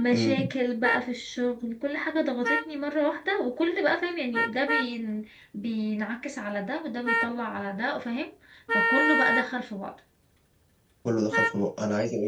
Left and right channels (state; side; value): identical; both; correlation 1.00